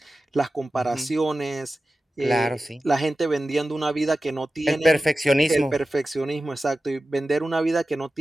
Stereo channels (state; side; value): normal; both; correlation 0.94